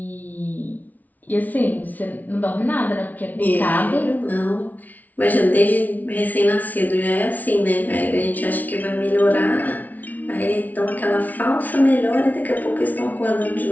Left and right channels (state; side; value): late; right; 0.076 ms